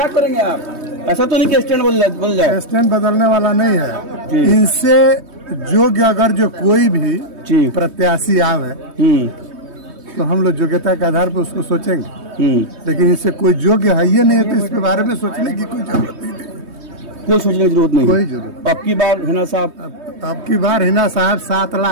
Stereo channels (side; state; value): left; late; 3.2 ms